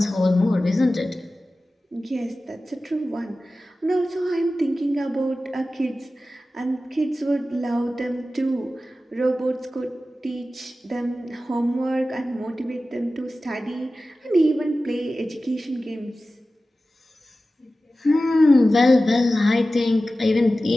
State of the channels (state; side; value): normal; both; correlation 0.95